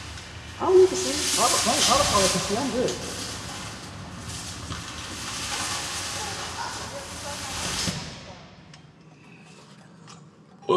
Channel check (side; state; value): both; identical; correlation 1.00